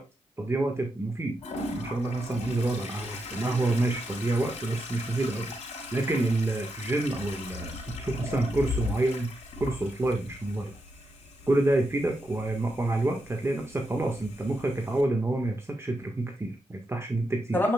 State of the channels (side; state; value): both; normal; correlation 0.84